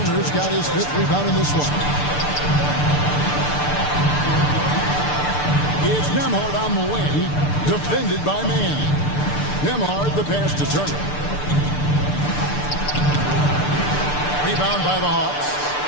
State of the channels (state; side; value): late; right; 6.8 ms